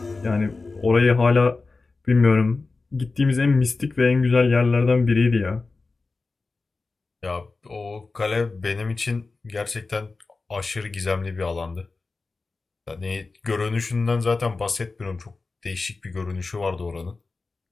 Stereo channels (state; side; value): quieter; right; 3.8 dB